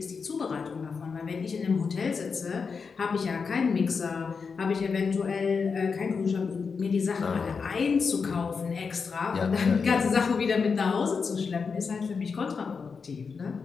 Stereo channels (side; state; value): right; quieter; 5.3 dB